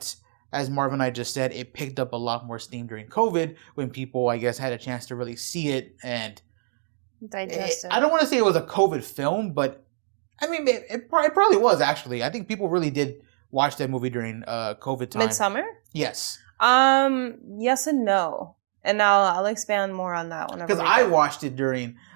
as Marv and I just said, it picked up a lot more steam during COVID when people, I guess, had a chance to really see it and digest it. I don't want to say it was a COVID film, but I mean, it probably was, actually. I think people really did watch that movie during COVID time. Midsommar? Yes. Yes and no. And I'll expand more on that one. Because I watched it during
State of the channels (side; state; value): left; silent; digital silence